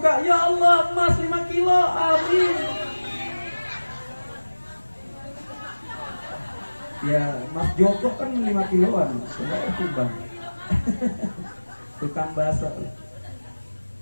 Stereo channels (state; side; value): inverted; both; correlation -1.00